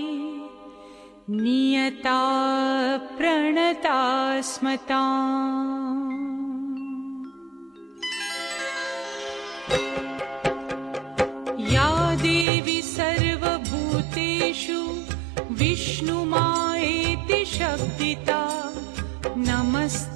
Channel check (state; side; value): drops out; left; at 12.5 s